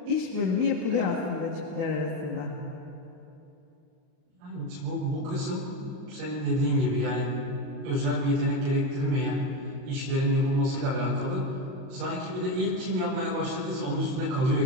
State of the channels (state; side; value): late; left; 38 ms